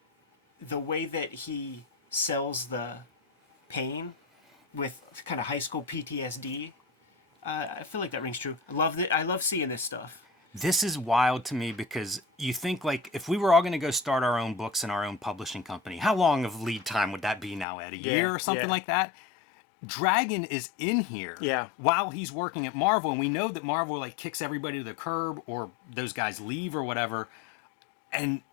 the way that he sells the pain with kind of high school PTSD, I feel like that rings true. I love seeing this stuff. This is wild to me because you think like if we were all going to go start our own books in our own publishing company, how long of lead time would that be now, Ed? A year or something like that? Dragon is in here while he's working at Marvel, and we know that Marvel like kicks everybody to the curb or those guys leave or whatever, and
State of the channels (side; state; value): right; drops out; at 17.7 s